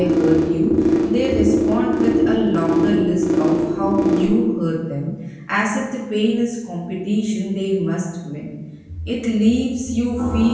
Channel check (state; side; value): identical; both; correlation 1.00